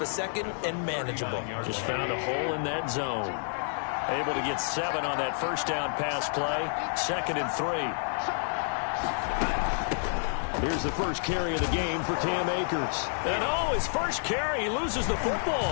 second and manageable. Just found a hole in that zone. Able to get 7 on that first down pass play. 2nd and 3. Here's the first carry of the game for Cam Akers. And his first carry, he loses the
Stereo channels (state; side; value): silent; right; digital silence